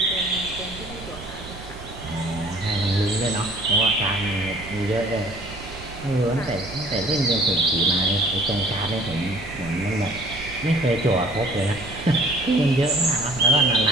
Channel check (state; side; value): noise; right; rumble, 14 dB below the sound